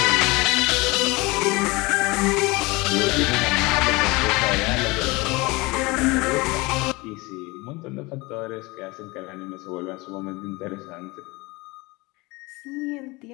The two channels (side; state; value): right; quieter; 23.8 dB